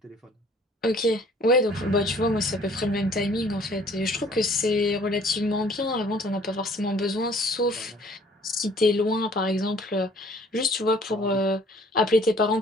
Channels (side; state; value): both; normal; correlation 0.56